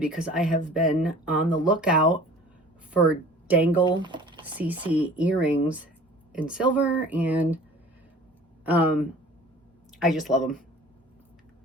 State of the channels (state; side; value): normal; both; correlation 0.46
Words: I have been on the lookout for dangle CC earrings in silver, and I just love them.